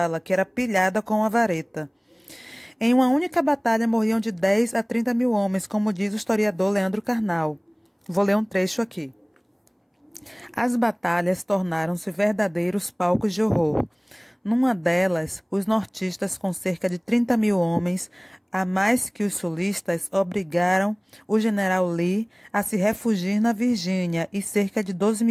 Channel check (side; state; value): both; identical; correlation 1.00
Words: que era pilhada com uma vareta. Em uma única batalha morriam de 10 a 30 mil homens, como diz o historiador Leandro Carnal. Vou ler um trecho aqui. As batalhas tornaram-se verdadeiros palcos de horror. Numa delas, os nortistas, com cerca de 30 mil homens, a mais que os sulistas, obrigaram o general Lee a se refugiar na Virgínia e cerca de 12